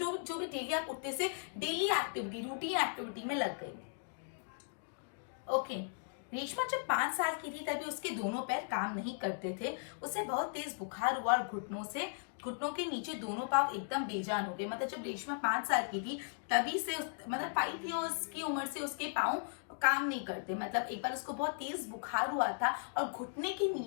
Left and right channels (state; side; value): silent; right; digital silence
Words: भी डेली आप उठते से डेली एक्टिविटी, रूटीन एक्टिविटी में लग गई. ओके. रेशमा जब 5 साल की थी तभी उसके दोनों पैर काम नहीं करते थे. उसे बहुत तेज बुखार हुआ और घुटनों के नीचे दोनों पांव एकदम बेजान हो गए. मतलब जब रेशमा 5 साल की थी तभी से मतलब 5 इयर्स की उम्र से उसके पांव काम नहीं करते. मतलब एक बार उसको बहुत तेज बुखार हुआ था और घुटने के